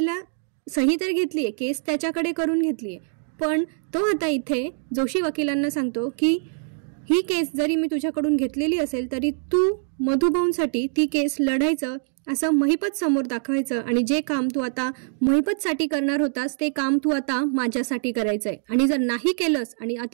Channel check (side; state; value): left; silent; digital silence